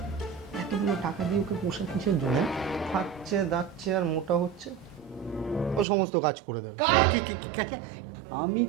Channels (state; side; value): drops out; left; at 5.9 s